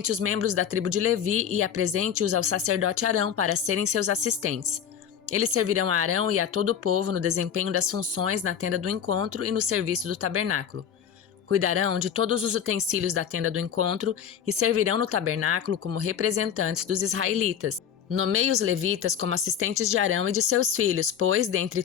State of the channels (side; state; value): right; quieter; 8.5 dB